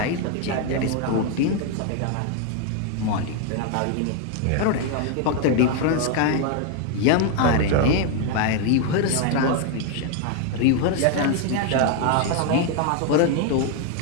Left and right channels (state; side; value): different; both; correlation 0.01